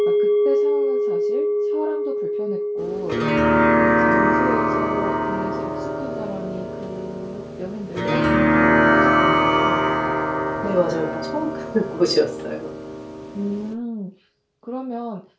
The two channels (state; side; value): identical; both; correlation 1.00